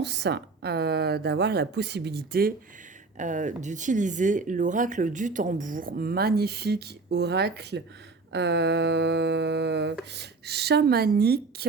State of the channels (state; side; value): quieter; left; 4.1 dB